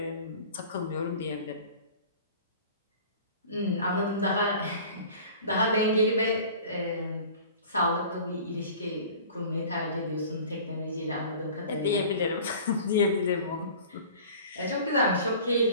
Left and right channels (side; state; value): both; inverted; correlation -0.43